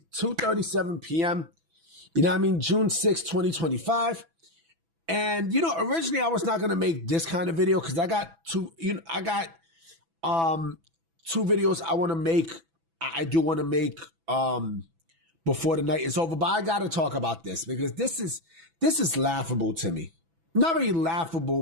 p.m. You know what I mean? June 6th, 2025. And, originally I was not going to make this kind of video because I got two videos I want to make. I do want to make before the night is over. But I got to talk about this because this is laughable to me. Not really laughable,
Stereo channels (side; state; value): left; late; 6.0 ms